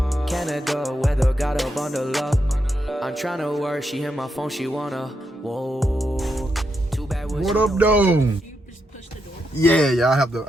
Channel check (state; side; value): normal; both; correlation 0.83